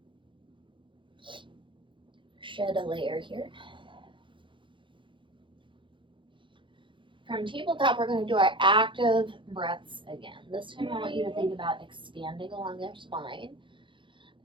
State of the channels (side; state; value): left; late; 0.24 ms